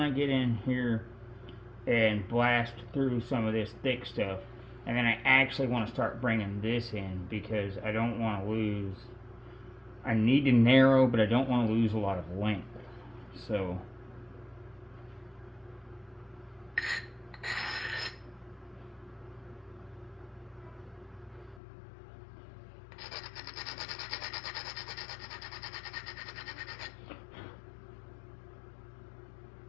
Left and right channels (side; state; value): right; drops out; at 21.6 s